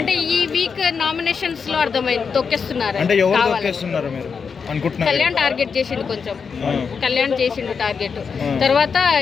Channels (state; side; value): quieter; right; 5.8 dB